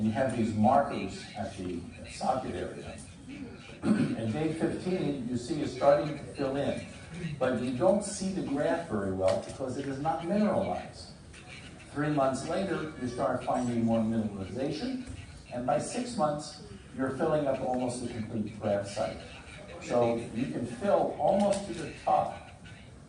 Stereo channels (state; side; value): identical; both; correlation 1.00